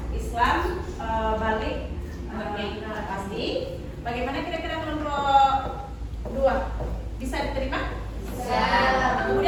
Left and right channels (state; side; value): identical; both; correlation 1.00